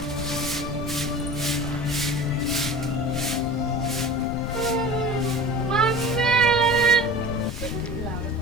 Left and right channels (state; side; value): noise; left; rumble, 7 dB below the sound